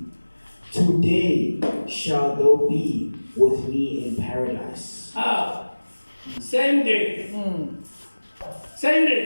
today shalt thou be with me in paradise. Same day. Same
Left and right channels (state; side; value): inverted; both; correlation -1.00